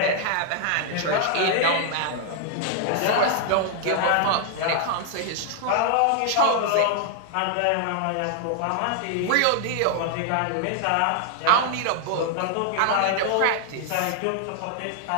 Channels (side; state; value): both; different; correlation 0.00